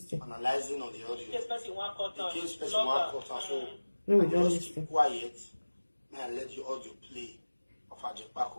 Analyzing on the audio. The case person one quarter, so we will just be quiet. May I let the audio play of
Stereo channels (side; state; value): both; inverted; correlation -1.00